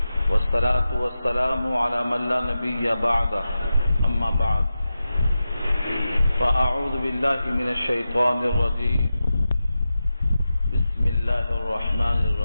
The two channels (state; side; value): inverted; both; correlation -0.92